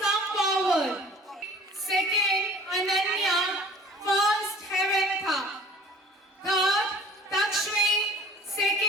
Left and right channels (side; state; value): both; normal; correlation 0.47